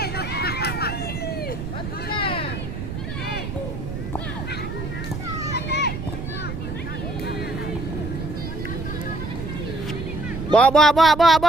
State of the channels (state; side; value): noise; right; rumble, 6 dB below the sound